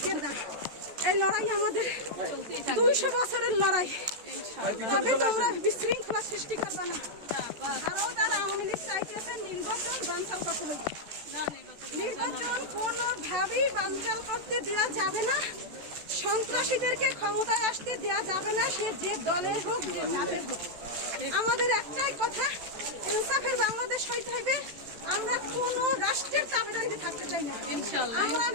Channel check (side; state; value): left; late; 14 ms